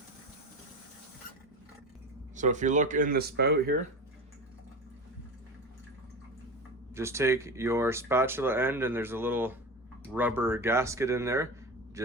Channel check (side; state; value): both; normal; correlation 0.26